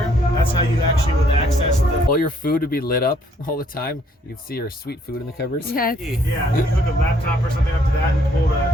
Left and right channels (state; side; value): normal; both; correlation 0.66